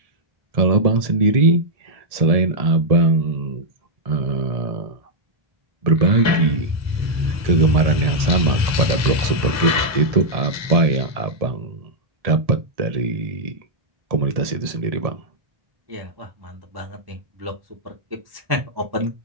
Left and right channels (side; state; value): left; late; 1.7 ms